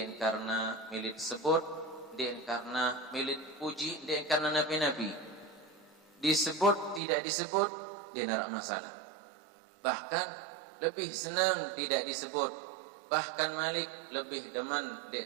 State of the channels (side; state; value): left; drops out; at 7.0 s